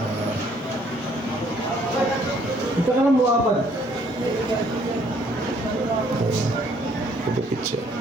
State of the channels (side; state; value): both; normal; correlation 0.63